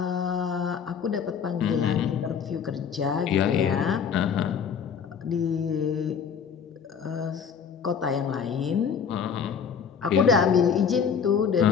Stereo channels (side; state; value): right; quieter; 6.9 dB